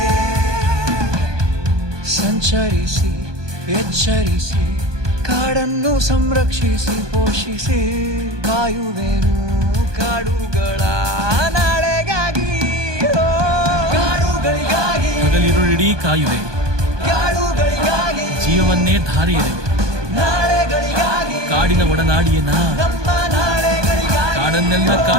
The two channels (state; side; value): late; left; 1.2 ms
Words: ಸಂಚರಿಸಿ ಎಚ್ಚರಿಸಿ, ಕಾಡನ್ನು ಸಂರಕ್ಷಿಸಿ ಪೋಷಿಸಿ, ಕಾಯುವೆನು ಕಾಡುಗಳ ನಾಳೆಗಾಗಿ ಕಾಡುಗಳಿಗಾಗಿ, ಹಗಲಿರುಳಿಡೀ ಕಾಯುವೆ ಕಾಡುಗಳಿಗಾಗಿ, ಜೀವವನ್ನೇ ಧಾರೆ ಎರೆವೆ ನಾಳೆಗಳಿಗಾಗಿ, ಕಾಡಿನ ಒಡನಾಡಿಯನ ನಮ್ಮ ನಾಳೆಗಳಿಗಾಗಿ, ಕಾಡನ್ನೆಲ್ಲ